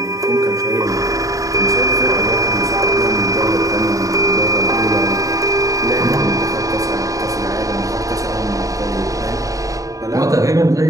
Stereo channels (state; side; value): late; left; 0.16 ms